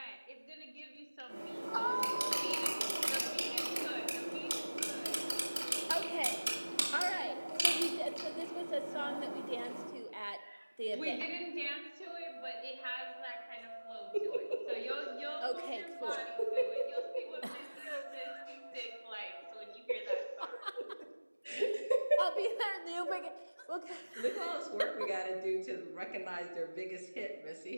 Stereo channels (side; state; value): both; inverted; correlation -1.00